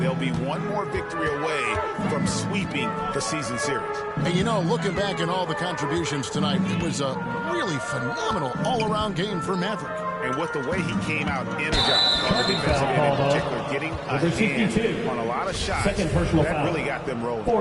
they'll be one more victory away from sweeping the season series. And you know, looking back at all the contributions tonight, it was a really phenomenal all-around game for Maverick. And with the way he came out energized on the defensive end in particular, getting a hand on a lot of shots, that really got them rolling.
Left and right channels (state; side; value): identical; both; correlation 1.00